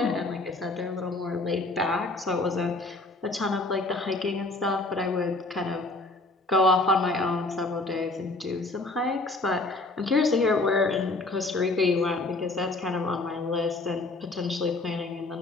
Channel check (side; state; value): right; quieter; 3.1 dB